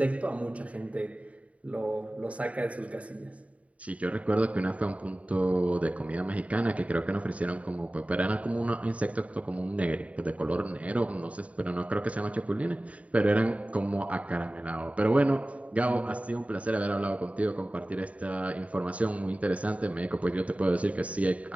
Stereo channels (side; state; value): left; late; 0.067 ms